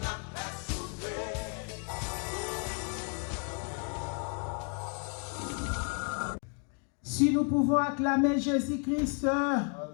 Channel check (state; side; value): quieter; right; 37.8 dB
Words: Si nous pouvons acclamer Jésus-Christ,